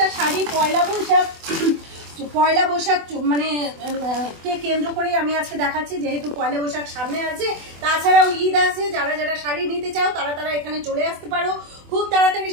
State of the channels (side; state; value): left; late; 24 ms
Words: শাড়ি পয়লা বৈশাখ মানে কে কেন্দ্র করেই আমি আজকে দেখাচ্ছি, যেহেতু পয়লা বৈশাখ সামনে আছে। তাছাড়াও ঈদ আছে, যারা শাড়ি নিতে চাও তারা এখানে চলে আসতে পারো। খুব তাড়াতাড়ি